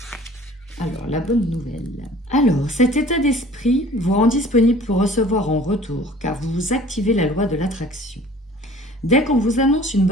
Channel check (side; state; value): both; normal; correlation 0.49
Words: Alors, la bonne nouvelle. Alors, cet état d'esprit vous rend disponible pour recevoir en retour, car vous activez la loi de l'attraction. Dès qu'on vous annonce une